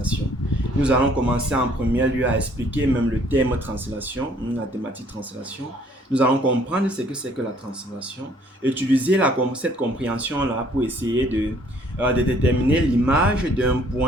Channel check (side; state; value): both; normal; correlation 0.61